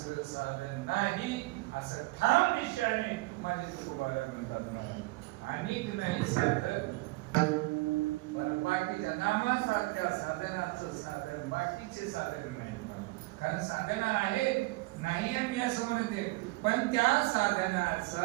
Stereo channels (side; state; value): left; quieter; 22.7 dB